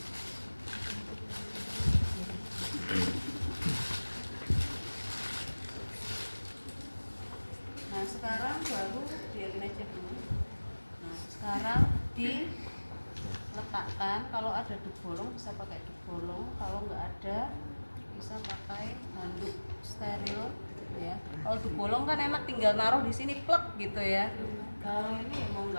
Nah, sekarang baru biarin aja dulu. Nah, sekarang diletakkan. Kalau ada dubolong bisa pakai dubolong, kalau nggak ada bisa pakai handuk steril ya. Kalau dubolong kan enak tinggal naruh di sini plek gitu ya. Kalau ini mau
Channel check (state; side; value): inverted; both; correlation -1.00